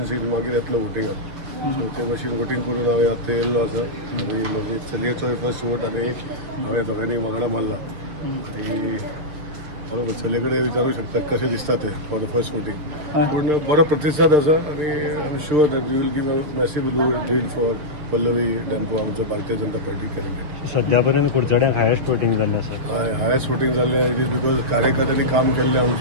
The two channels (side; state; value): left; late; 6.7 ms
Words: मागीर येतलो वोटिंगाक सो ते भाशेन वोटिंग करून हांवें आतां येयल्लो आसा आनी म्हजी चलयेचो फर्स्ट वोट आनी हांवें दोगांनी वांगडा मारला आनी बरोबर चलये कडेन विचारूंक शकता कशें दिसता ते फॉर द फर्स्ट वोटिंग पूण बरो प्रतिसाद आसा आनी I am sure that we will give a massive lead for Pallavi डॅन्को आमचो भारतीय जनता पार्टी कॅन्डिडेट. सध्या पर्यंत कुडचड्यांक हायेस्ट वोटिंग जाल्लें आसा. हायेस्ट वोटिंग जाल्लें इट इज बिकॉज कार्यकर्त्यांनी काम केल्लें